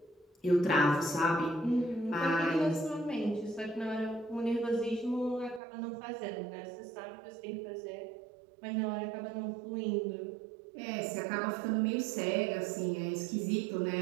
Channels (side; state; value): left; drops out; at 5.6 s